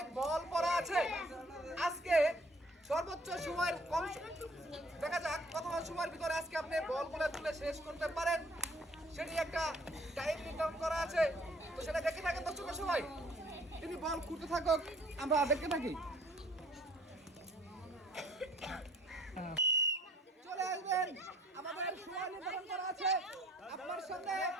বল পড়া আছে। আজকে সর্বোচ্চ সময়ের কম দেখা যাক কত সময়ের ভিতরে আজকে আপনি বলগুলো তুলে শেষ করতে পারেন, সেটি একটা টাইম নির্ধারণ করা আছে। তো সেটা দেখে থাকেন দর্শক সবাই। তিনি বল খুঁটতে থাকুক, আমরা দেখতে থাকি। চলে আসবেন, আমাদের সময় নির্ধারণ করা আছে। আপনার সামনে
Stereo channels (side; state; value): both; normal; correlation 0.57